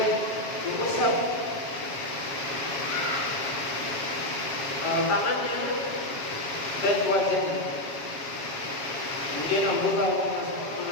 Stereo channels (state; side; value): late; right; 7.3 ms